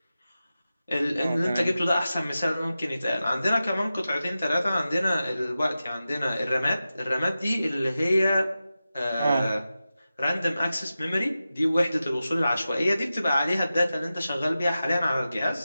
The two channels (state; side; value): inverted; both; correlation -0.93